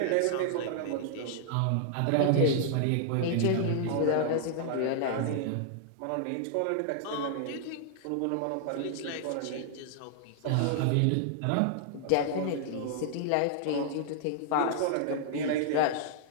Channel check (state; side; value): different; both; correlation -0.01